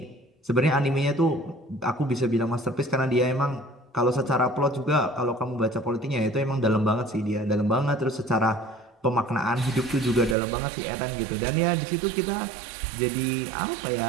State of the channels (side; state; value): left; drops out; at 10.4 s